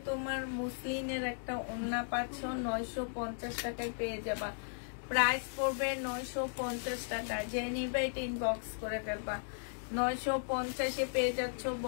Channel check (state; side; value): silent; right; digital silence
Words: তোমার মুসলিনের একটা ওড়না পাচ্ছ, 950 টাকায় পেয়ে যাবা। প্রাইস পড়বে 950 টাকা। যে নিবে এটা ইনবক্স করে ফেলবা, 950-এ পেয়ে যাচ্ছ।